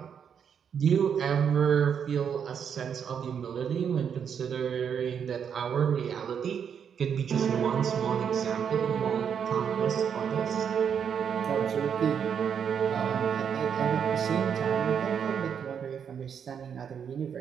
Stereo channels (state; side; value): quieter; left; 7.6 dB